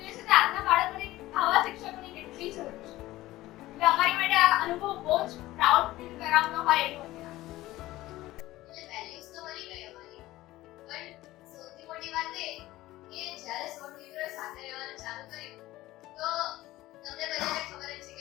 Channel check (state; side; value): quieter; right; 17.0 dB